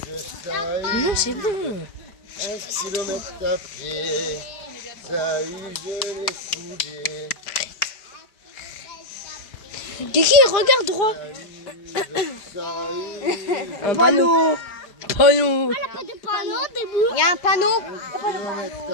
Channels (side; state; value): right; late; 4.9 ms